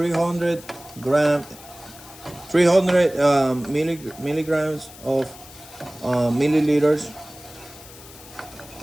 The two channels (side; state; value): left; noise; hiss, 19 dB below the sound